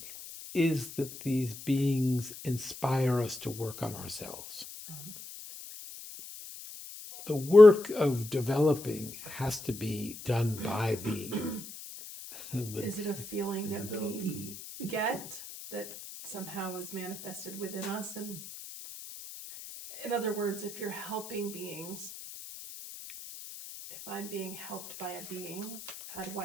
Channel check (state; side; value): noise; left; hiss, 13 dB below the sound